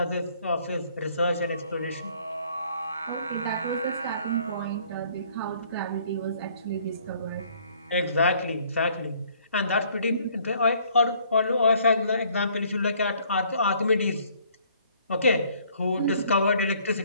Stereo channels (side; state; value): both; inverted; correlation -0.61